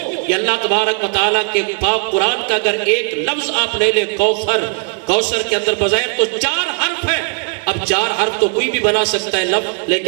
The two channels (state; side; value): quieter; left; 39.3 dB